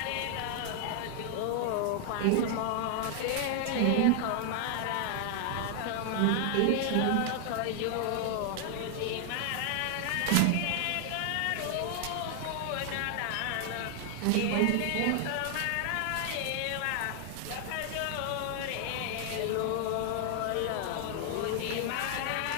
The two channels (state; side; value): different; both; correlation 0.00